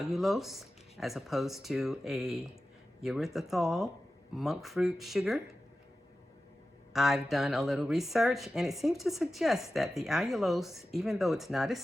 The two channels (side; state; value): both; normal; correlation 0.94